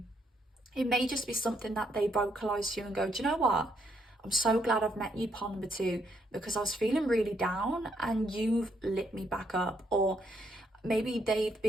It may just be something that they vocalize to you and go, do you know what? I'm so glad I've met you, pile number two, because I was feeling really down and you've lit me back up. Or maybe they've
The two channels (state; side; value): normal; both; correlation 0.74